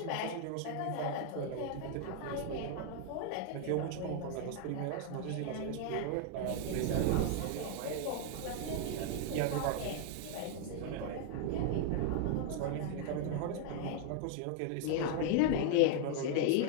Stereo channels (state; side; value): different; both; correlation 0.00